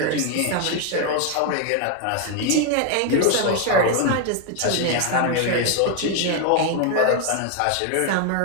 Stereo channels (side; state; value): both; different; correlation 0.01